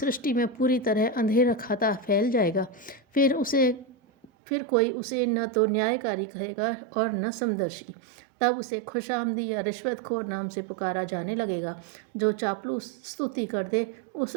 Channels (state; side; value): drops out; left; at 4.2 s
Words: में पूरी तरह अंधेरा खाता फैल जाएगा। फिर कोई उसे न तो न्यायकारी कहेगा और न समदर्शी। तब उसे खुशामदी या रिश्वतखोर नाम से पुकारा जाने लगेगा। जो चापलूस स्तुति कर दे